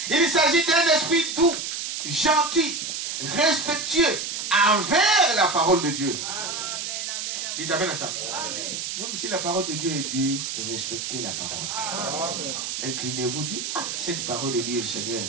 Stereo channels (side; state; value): right; noise; hiss, 4 dB below the sound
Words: Il s'agit d'un esprit doux, gentil, respectueux envers la parole de Dieu. Dites amen à ça. Même si la parole de Dieu est dure, respectez la parole. Inclinez-vous, dites, ah, cette parole est dure, Seigneur,